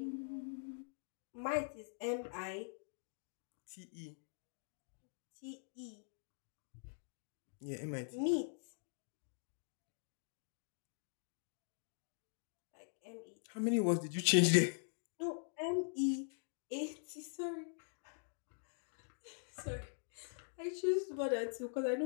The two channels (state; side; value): silent; right; digital silence